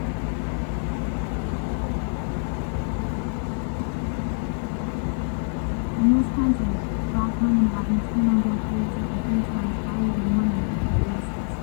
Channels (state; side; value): silent; right; 58 dB below the other